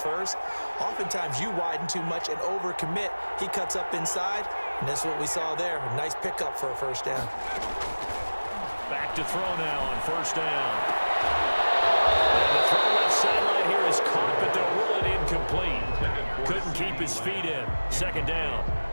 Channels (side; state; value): both; inverted; correlation -1.00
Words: oftentimes you widen too much and overcommit. He cuts up inside, and that's what we saw there. A nice pickup for a first down. Back to throw now on first down. And the throw left sideline here is caught, but they'll rule it incomplete. Couldn't keep his feet in. Second down.